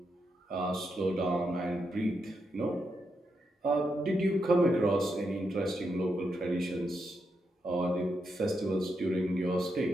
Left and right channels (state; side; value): normal; both; correlation 0.83